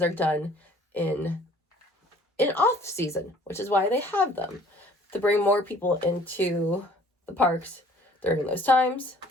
are done in off season, which is why they have them, to bring more people into the parks during those times.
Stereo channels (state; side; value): normal; both; correlation 0.54